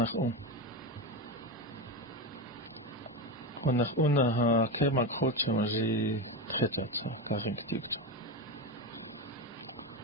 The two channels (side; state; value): both; normal; correlation 0.16